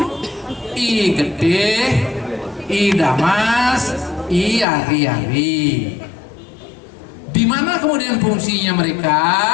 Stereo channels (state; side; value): drops out; right; at 4.7 s